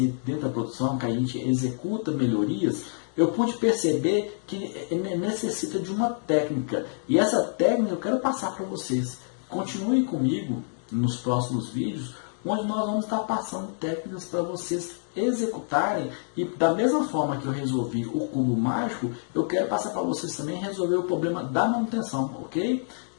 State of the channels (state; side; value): silent; right; digital silence